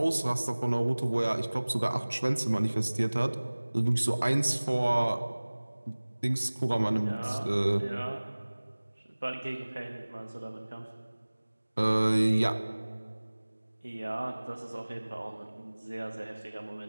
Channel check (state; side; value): inverted; both; correlation -1.00